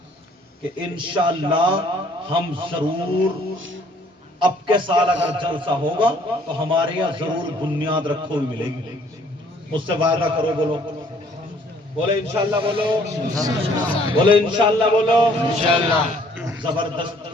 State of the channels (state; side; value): normal; both; correlation 0.60